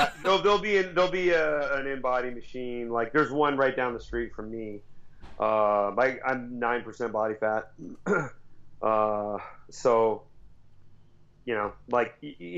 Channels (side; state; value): both; identical; correlation 1.00